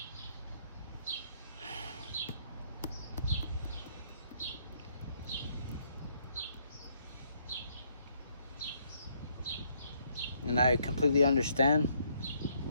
And I completely understand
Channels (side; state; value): both; inverted; correlation -0.70